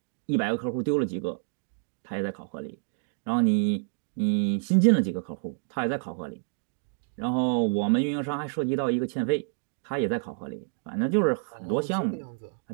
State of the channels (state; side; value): silent; left; digital silence